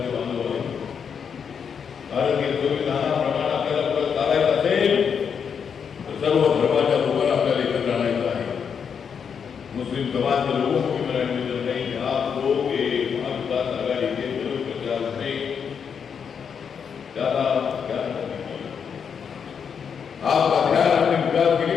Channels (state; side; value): quieter; right; 6.9 dB